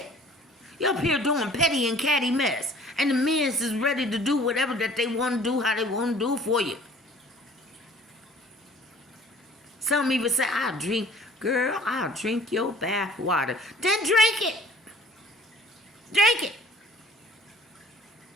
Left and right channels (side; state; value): both; normal; correlation 0.51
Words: You're up here doing petty and catty mess. And the men is ready to do whatever that they want to do, how they want to do for you. Some even say, I'll drink your bath water. Then drink it. Drink it.